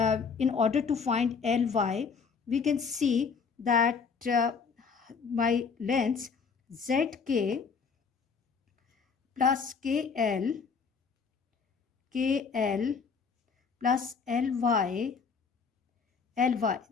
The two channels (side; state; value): right; quieter; 5.6 dB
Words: in order to find LY, we can see that my length ZK plus KL plus LY,